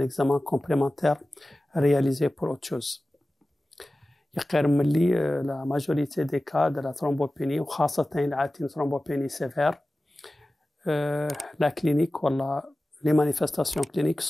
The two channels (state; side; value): normal; both; correlation 0.96